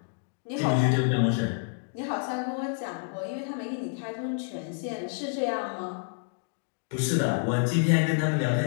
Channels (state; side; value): silent; right; digital silence